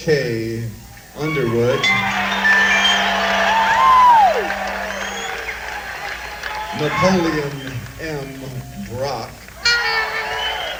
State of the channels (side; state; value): both; identical; correlation 1.00